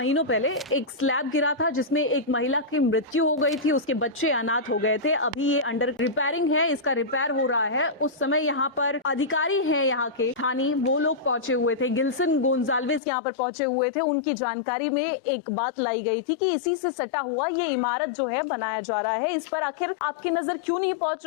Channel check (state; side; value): drops out; right; at 13.0 s